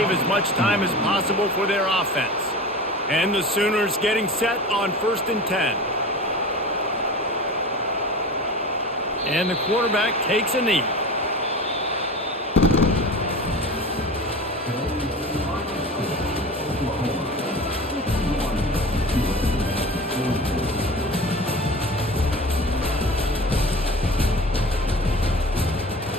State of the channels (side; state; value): both; normal; correlation 0.34